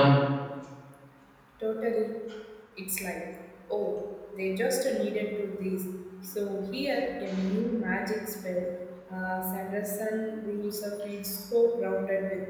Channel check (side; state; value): both; identical; correlation 1.00